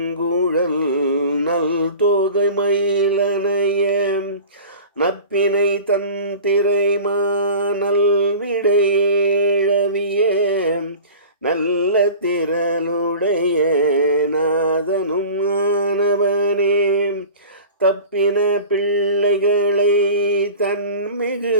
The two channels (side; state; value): both; inverted; correlation -0.39